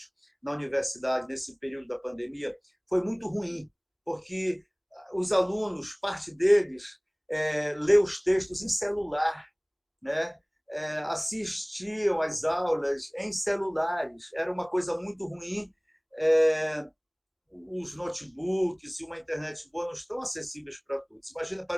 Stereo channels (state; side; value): identical; both; correlation 1.00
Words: na universidade nesse período da pandemia foi muito ruim, porque os alunos, parte deles, lê os textos em celular, né? Assistiam às aulas em celulares. Era uma coisa muito ruim. É, os notebooks e uma internet boa não estão acessíveis para todos. Imagina